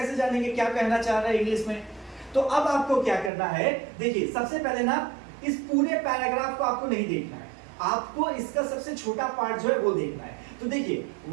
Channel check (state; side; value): drops out; left; at 3.3 s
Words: जानेंगे क्या कहना चाह रहा है इंग्लिश में। तो अब आपको क्या करना है, देखिए सबसे पहले ना इस पूरे पैराग्राफ को आपको नहीं देखना है, आपको इसका सबसे छोटा पार्ट जो है वो देखना है। तो देखिए